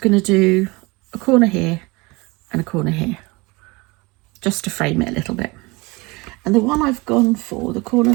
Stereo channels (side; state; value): left; quieter; 24.8 dB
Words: to do a corner here and a corner here, just to frame it a little bit. And the one I've gone for, the corner